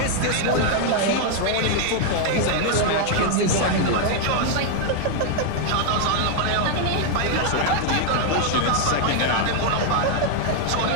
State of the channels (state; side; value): different; both; correlation 0.00